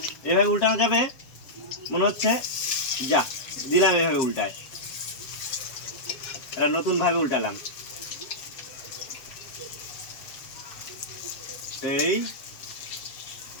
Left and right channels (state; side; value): late; right; 7.4 ms